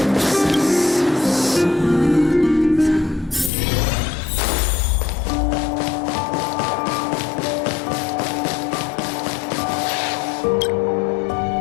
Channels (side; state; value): right; drops out; at 3.5 s